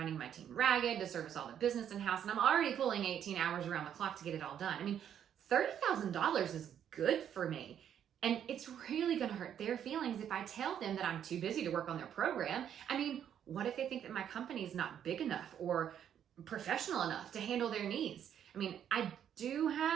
my team ragged to service all the business in-house, and I'm already pulling 18 hours around the clock to get it all done. $30,000 is good for me. And it's really going to hurt their feelings if I tell them that I'm too busy to work on their program. What if they think that my company is not big enough or professional enough to handle their needs? I mean, I do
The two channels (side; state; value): left; quieter; 9.4 dB